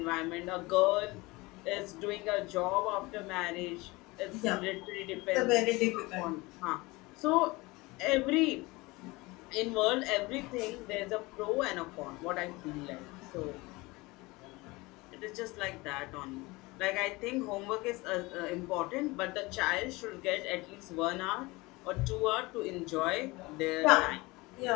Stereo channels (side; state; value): right; quieter; 22.9 dB